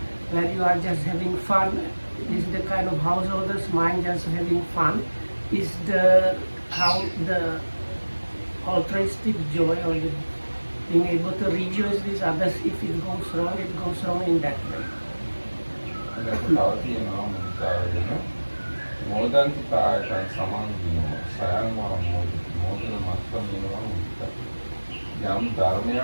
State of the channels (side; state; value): both; inverted; correlation -1.00